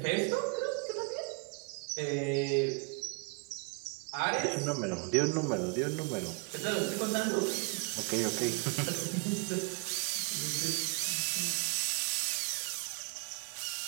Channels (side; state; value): left; quieter; 34.7 dB